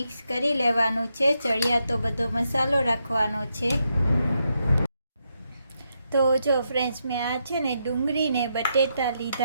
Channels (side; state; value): both; inverted; correlation -0.81